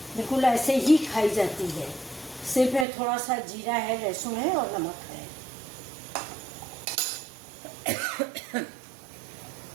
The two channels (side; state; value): left; drops out; at 2.9 s